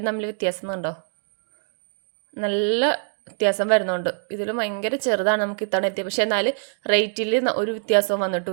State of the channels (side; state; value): left; silent; 63 dB below the other